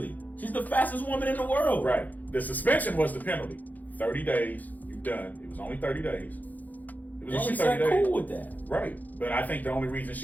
She's the fastest woman in the world. Right. The suspension was the penalty. 30 days. You're done. It was only 30 days. It was And only she 30 said days. cool with that. Right. But I think the only reason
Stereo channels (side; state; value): right; late; 0.082 ms